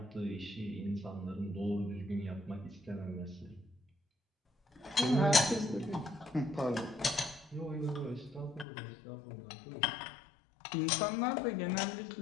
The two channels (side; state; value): right; drops out; at 8.7 s